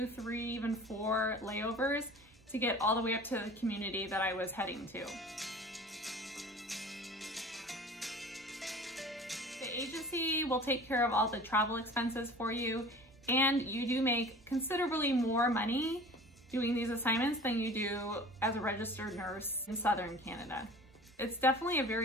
3, even 4 layovers to get all the way up to the community that I was heading to. The agency will take care of all the travel expenses for you, and you do make considerably more money doing these assignments than you do as a registered nurse in Southern Canada. It's definitely a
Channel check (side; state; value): both; normal; correlation 0.42